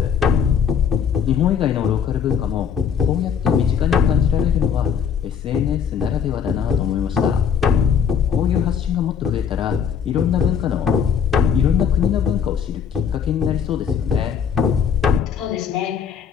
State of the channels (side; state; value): right; quieter; 7.4 dB